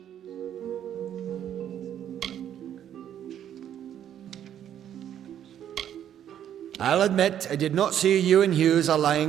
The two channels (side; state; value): left; quieter; 10.2 dB